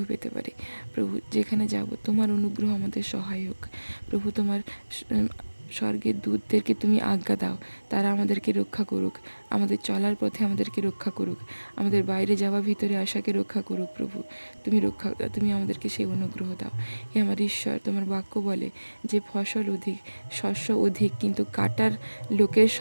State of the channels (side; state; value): both; inverted; correlation -1.00